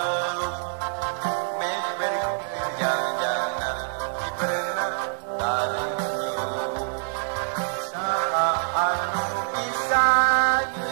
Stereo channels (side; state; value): left; silent; digital silence